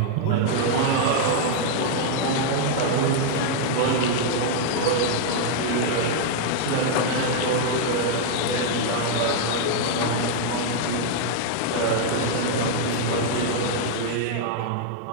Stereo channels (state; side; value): different; both; correlation 0.00